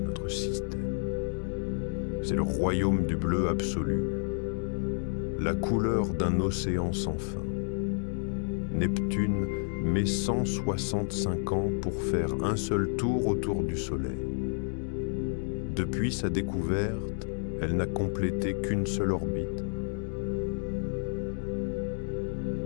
système. C'est le royaume du bleu absolu, la couleur d'un océan sans fin. Neptune met 165 ans pour faire un seul tour autour du Soleil. Depuis sa découverte, elle n'a complété qu'une seule orbite.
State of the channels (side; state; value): right; silent; 58 dB below the other